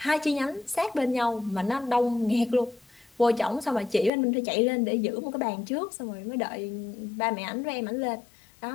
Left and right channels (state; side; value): drops out; right; at 4.1 s